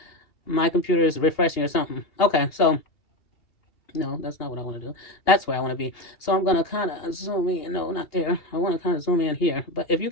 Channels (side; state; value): right; late; 2.8 ms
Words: My computer is refreshing or something. Okay, so, no, that's not what I want to do. That's where I want to be. So I'm going to kind of zoom in. No, not there. I want to kind of zoom in here. But if you